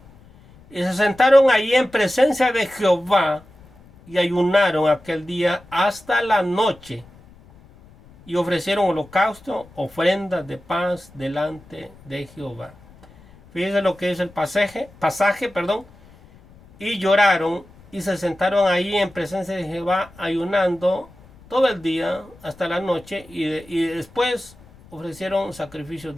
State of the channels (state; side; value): noise; left; rumble, 25 dB below the sound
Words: y se sentaron allí en presencia de Jehová y ayunaron aquel día hasta la noche y ofrecieron holocausto, ofrendas de paz delante de Jehová. Fíjense lo que es el pasaje, perdón. Y lloraron y se sentaron ahí en presencia de Jehová ayunando todo el día hasta la noche y después ofrecieron sacrificios